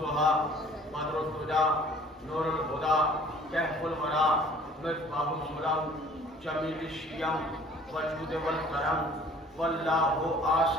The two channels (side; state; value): both; normal; correlation 0.52